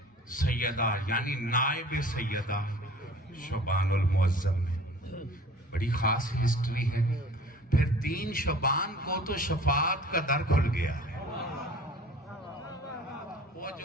सैयदा यानी नायब सैयदा शोबानुल मुअज्जम में बड़ी खास हिस्ट्री है। फिर 3 शबान को तो शफात का दर खुल गया है। वो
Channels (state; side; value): normal; both; correlation 0.46